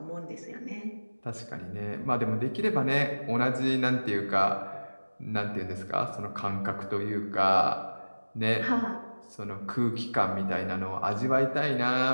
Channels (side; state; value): both; inverted; correlation -1.00